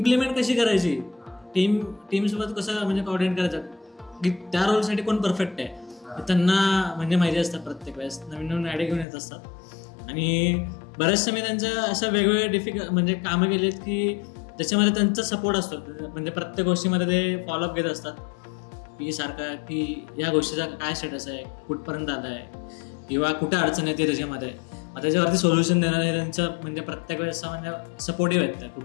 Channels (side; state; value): right; drops out; at 9.1 s